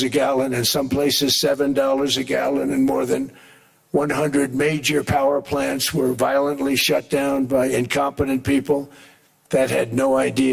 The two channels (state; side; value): identical; both; correlation 1.00